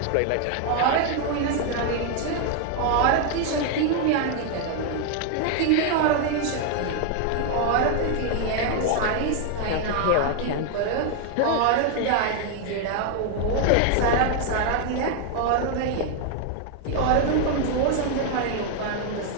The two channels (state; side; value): different; both; correlation 0.00